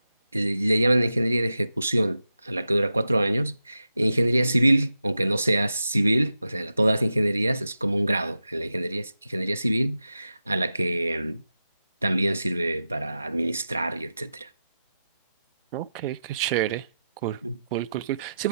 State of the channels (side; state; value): both; inverted; correlation -0.89